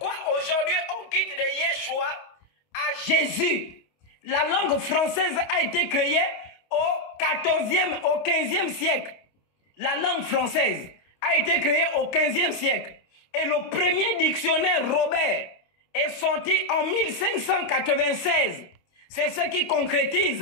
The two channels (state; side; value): late; right; 29 ms